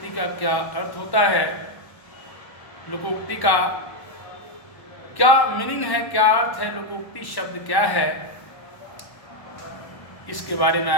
का क्या अर्थ होता है, लोकोक्ति का क्या मीनिंग है, क्या अर्थ है, लोकोक्ति शब्द क्या है, इसके बारे में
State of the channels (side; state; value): right; late; 1.0 ms